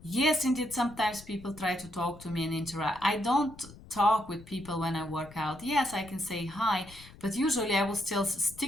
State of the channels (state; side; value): noise; left; rumble, 19 dB below the sound